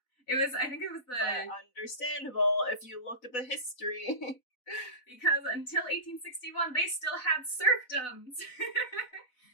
I think it was the... But understandable if you look at the history. Because until 1861, they still had serfdoms.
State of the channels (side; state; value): right; late; 4.0 ms